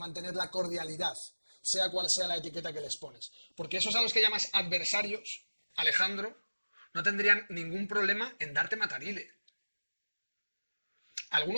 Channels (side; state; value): both; inverted; correlation -1.00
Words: la cordialidad, sea cual sea la etiqueta que les pones? Porque esos a los que llamas adversarios, Alejandro, no tendrían ningún problema en darte matarile.